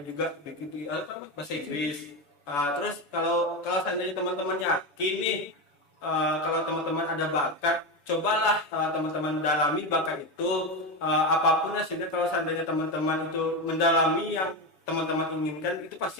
juga begitu bahasa Inggris. Terus kalau seandainya teman-teman yakin nih, kalau teman-teman ada bakat, cobalah teman-teman dalami bakat itu, apapun hasilnya. Kalau seandainya teman-teman itu mendalami yang teman-teman inginkan, itu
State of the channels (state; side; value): late; right; 7.0 ms